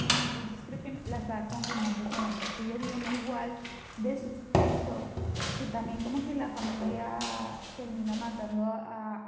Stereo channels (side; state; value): both; identical; correlation 1.00